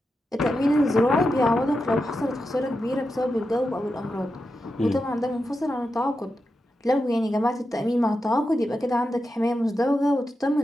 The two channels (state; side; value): normal; both; correlation 0.89